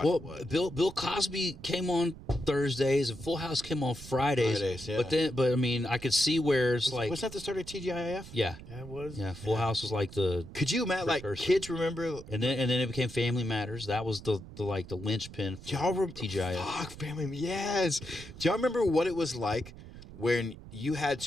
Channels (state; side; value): noise; right; rumble, 15 dB below the sound